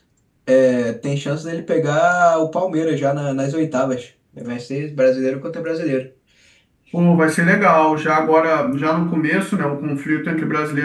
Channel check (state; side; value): identical; both; correlation 1.00